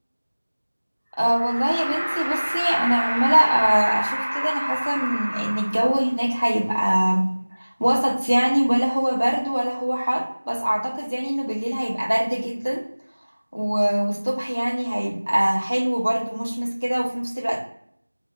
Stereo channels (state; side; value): inverted; both; correlation -1.00